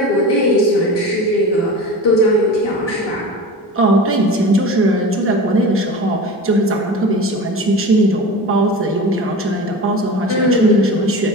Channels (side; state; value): both; normal; correlation 0.32